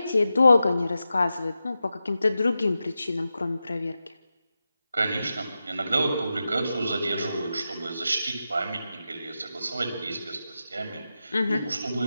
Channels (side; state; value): both; inverted; correlation -0.91